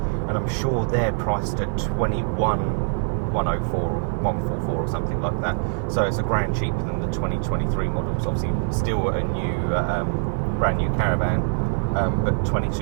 and I'm sure they're priced at 21,104 or 144 or something like that. So it's a grand cheaper than the 2023 models. Obviously, still a new, brand new Caravan, but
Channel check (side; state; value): left; silent; digital silence